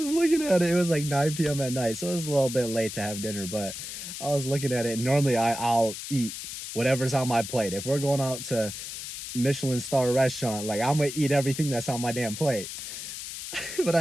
looking at it. It was like 9 p.m. at night, so it was a little bit late to have dinner. But I was looking at it. And normally, I'll eat whatever's on my plate. If we're going out to Michelin star restaurant, like I'm gonna eat everything that's on my damn plate. But I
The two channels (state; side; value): noise; left; hiss, 8 dB below the sound